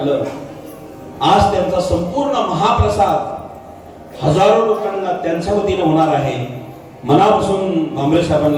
आज त्यांचा संपूर्ण महाप्रसाद हजारो लोकांना त्यांच्या वतीने होणार आहे. मनापासून भांबरे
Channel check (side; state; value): both; identical; correlation 1.00